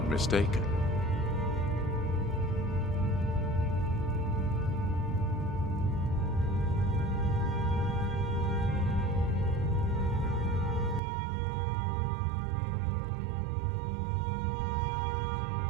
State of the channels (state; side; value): drops out; left; at 11.0 s